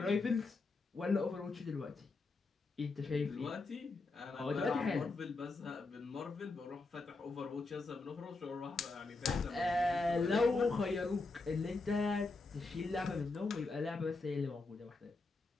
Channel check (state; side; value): quieter; right; 3.6 dB